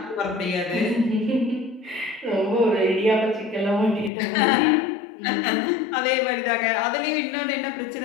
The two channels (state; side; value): drops out; right; at 4.1 s